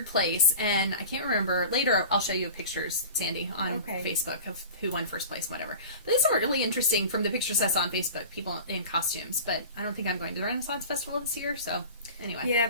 place, and I can't remember. Later, I'll show you pictures, Sandy, on Facebook of who won first place, whatever. But these are really interesting from the pictures I saw on Facebook. People in costumes, but I don't think I'm going to the Renaissance Festival this year. So anyway, yeah,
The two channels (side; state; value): both; inverted; correlation -0.36